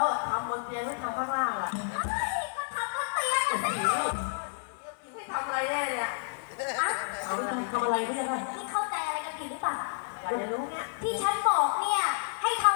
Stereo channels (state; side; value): silent; right; digital silence